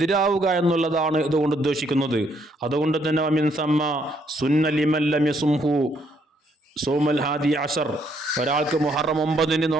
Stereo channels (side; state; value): both; normal; correlation 0.70